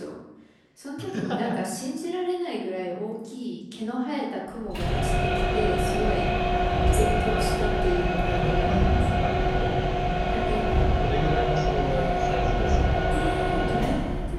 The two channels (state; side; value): identical; both; correlation 1.00